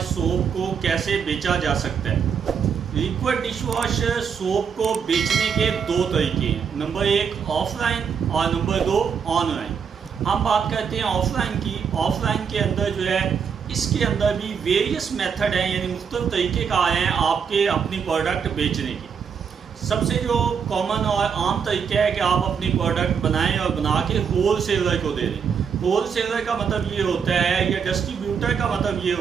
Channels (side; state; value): left; quieter; 6.8 dB